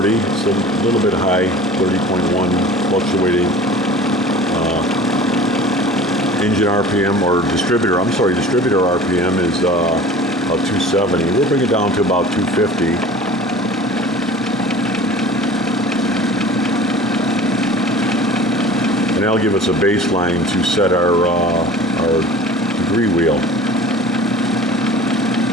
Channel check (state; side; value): normal; both; correlation 0.42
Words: so a little bit high, 30.1, fluctuating. Engine RPM or distributor RPM is about 270. We'll bring it down to about 250. And that'll give us a baseline to set our degree wheel.